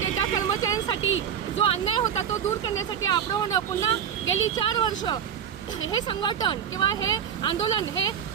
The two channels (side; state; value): left; quieter; 8.3 dB